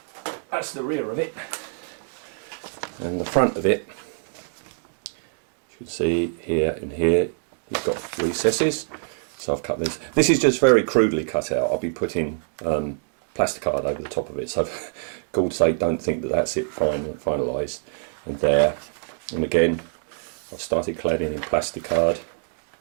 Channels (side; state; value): left; silent; digital silence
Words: that's the rear of it, and the front of it, you should see here and here, you've got recesses. So I've cut this. This is just very crudely cut out. I'll be putting plasticard over the top of it. So for God's sake, don't think that that's it finalised. And there, and again, I've started cladding in plasticard